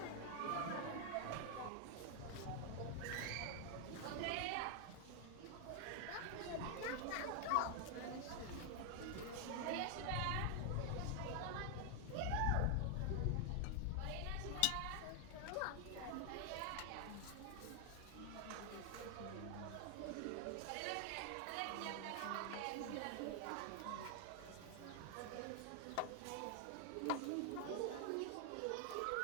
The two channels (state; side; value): different; both; correlation 0.00